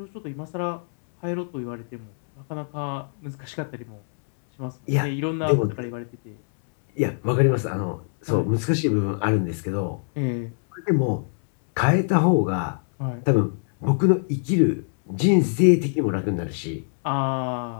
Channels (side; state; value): right; silent; 63 dB below the other